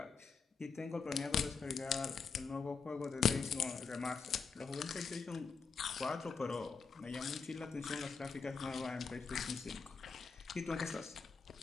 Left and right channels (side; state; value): right; quieter; 5.2 dB